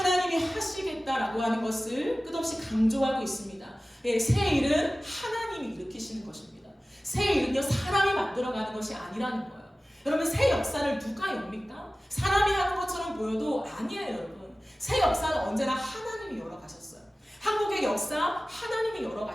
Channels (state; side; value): normal; both; correlation 0.96